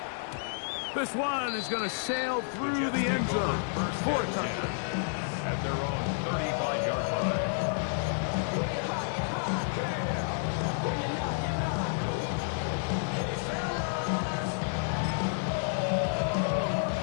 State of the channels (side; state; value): right; silent; 58 dB below the other